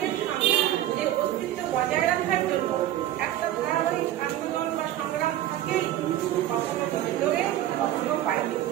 সঙ্গে যে অস্তিত্ব বজায় রাখার জন্য একটা ধারাবাহিক আন্দোলন বা সংগ্রাম থাকেই। কখনো ভিতরে কখনো বাইরে,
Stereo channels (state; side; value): quieter; left; 13.2 dB